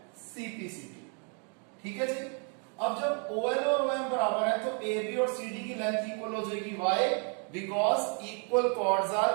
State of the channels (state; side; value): quieter; left; 38.7 dB